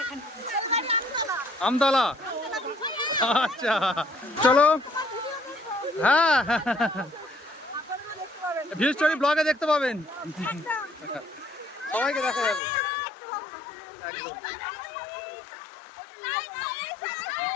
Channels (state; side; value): drops out; right; at 12.6 s